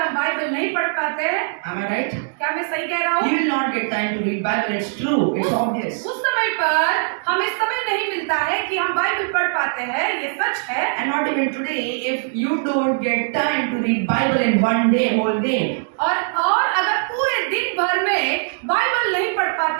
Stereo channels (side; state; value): left; silent; digital silence